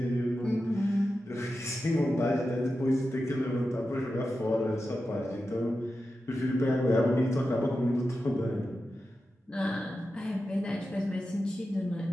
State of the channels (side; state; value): both; normal; correlation 0.91